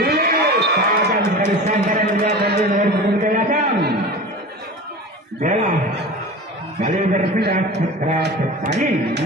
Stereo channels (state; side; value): normal; both; correlation 0.33